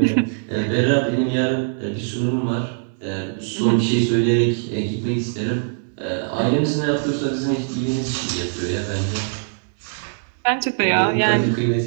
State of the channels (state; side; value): silent; left; digital silence